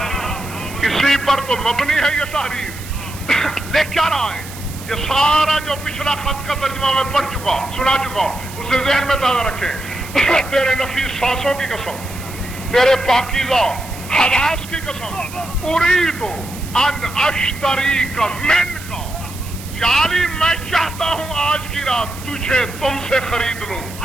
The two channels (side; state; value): right; noise; hiss, 15 dB below the sound